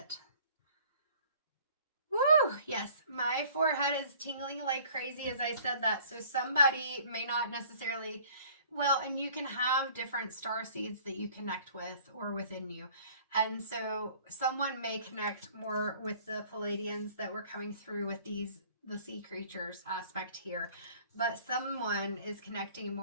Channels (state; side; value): inverted; both; correlation -0.53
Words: Woo! Yes, my forehead is tingling like crazy as I said that. So somebody may not necessarily... Well, and you can have different star seeds that you connect with or within you. And so someone may connect more with the Pleiadians that were coming through with the sea creatures aspect here. But someone is connecting